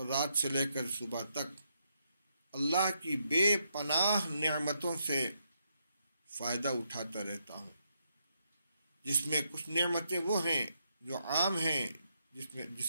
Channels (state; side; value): inverted; both; correlation -0.79